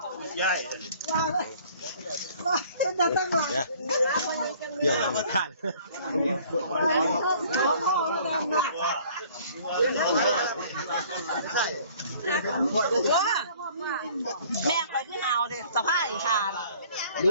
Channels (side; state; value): both; inverted; correlation -0.54